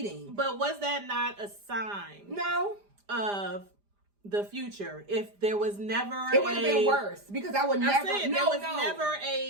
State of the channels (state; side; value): late; left; 5.0 ms